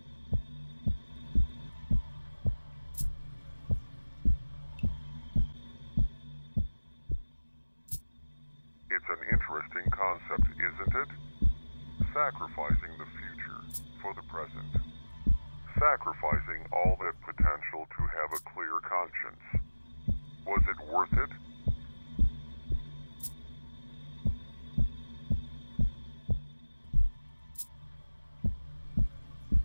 It's an interesting concept, isn't it? Sacrificing the future for the present. Sacrificing all that potential to have a clear conscience. Was it worth it?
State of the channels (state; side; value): inverted; both; correlation -1.00